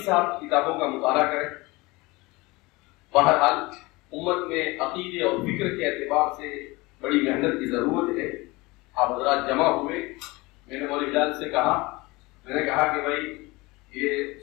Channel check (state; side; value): quieter; right; 23.0 dB